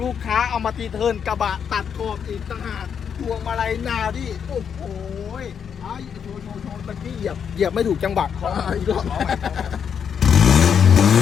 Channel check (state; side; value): quieter; right; 7.5 dB